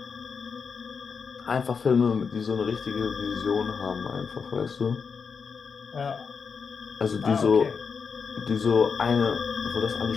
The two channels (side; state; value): right; quieter; 5.7 dB